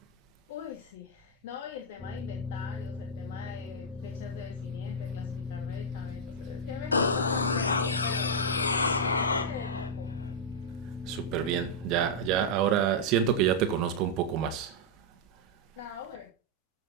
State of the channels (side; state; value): both; normal; correlation -0.06